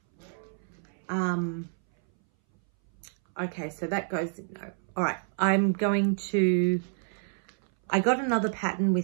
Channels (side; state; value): left; silent; 59 dB below the other